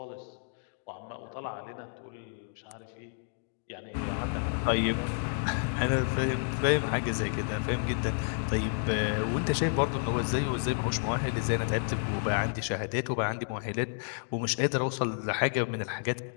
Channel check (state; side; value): silent; right; 57 dB below the other